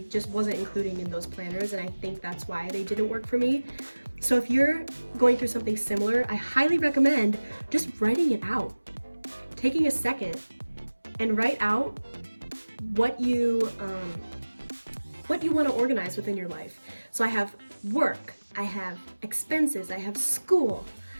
just wasn't including in those planners, and I think that's why they didn't work for me. So if you're going through something similar, I highly recommend just writing it out. Taking a second and write out what you want to organize within your life. So I have work, I have expenses, I have school,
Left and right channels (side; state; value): both; inverted; correlation -1.00